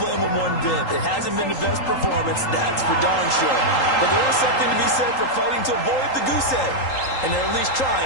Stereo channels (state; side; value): late; right; 3.8 ms